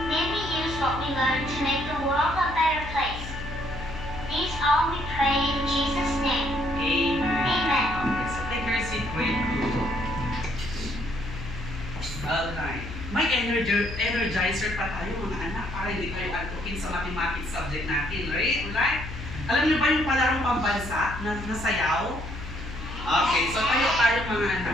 May we use what we learn to make the world a better place. These all we pray in Jesus' name. Amen. Amen. Okay, so take your seat, grade 2. Alright. May energizer pa tayo mga anak para hindi kayo antukin sa mathematics subject natin. Right? Alam niyo ba yung palarong pambansa na nasayaw? Okay, so tayo mga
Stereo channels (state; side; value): noise; left; hum, 9 dB below the sound